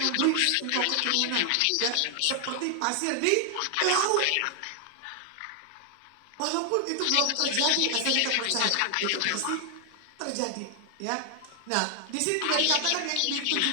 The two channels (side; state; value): both; different; correlation 0.00